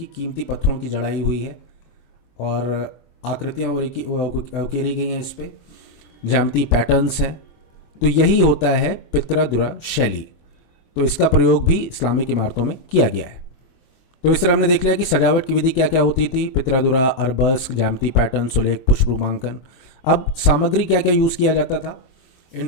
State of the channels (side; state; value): right; late; 23 ms